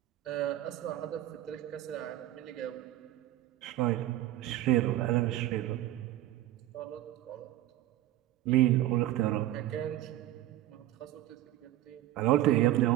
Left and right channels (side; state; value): left; quieter; 14.3 dB